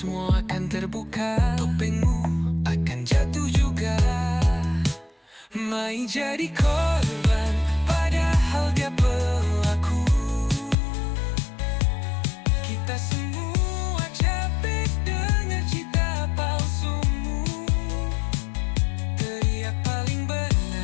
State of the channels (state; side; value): drops out; right; at 10.8 s